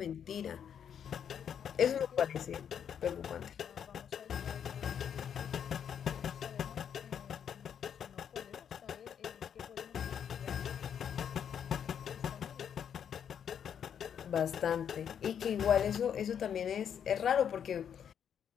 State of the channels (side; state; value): right; quieter; 8.4 dB